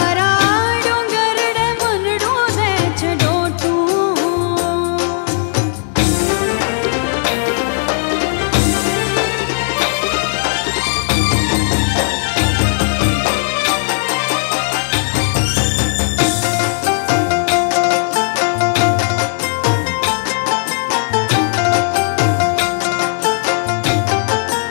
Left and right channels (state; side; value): silent; right; digital silence